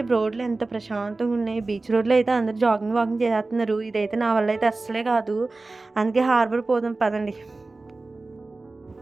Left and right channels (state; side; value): quieter; left; 3.3 dB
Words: రోడ్లు ఎంత ప్రశాంతంగున్నాయి. బీచ్ రోడ్‌లో అయితే అందరూ వాకింగ్ చేసేత్తన్నారు. ఇదైతే నా వల్ల అయితే అస్సలే కాదు. అందుకే హార్బర్ పోదాం పదండి.